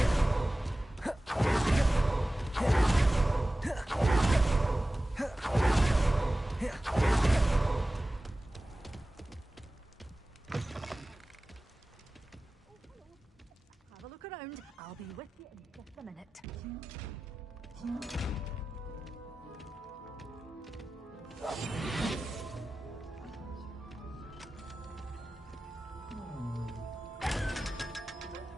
Have a look around. I'll be with you in just a minute.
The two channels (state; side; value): normal; both; correlation 0.96